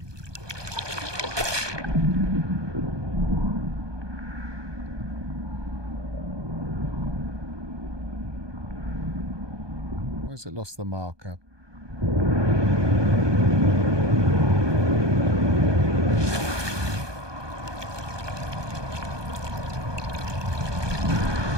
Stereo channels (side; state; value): left; late; 1.2 ms